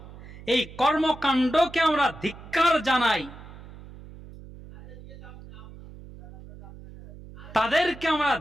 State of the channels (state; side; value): noise; right; hum, 17 dB below the sound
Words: এই কর্মকাণ্ডকে আমরা ধিক্কার জানাই। তাদেরকে আমরা